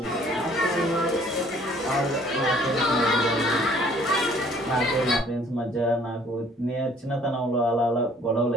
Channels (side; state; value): both; normal; correlation 0.57